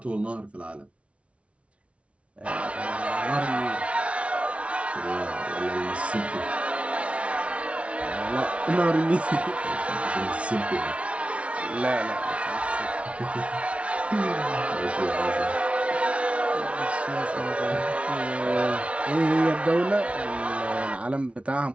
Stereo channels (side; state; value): left; late; 0.062 ms